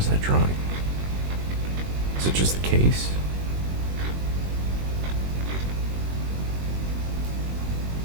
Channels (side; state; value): left; late; 21 ms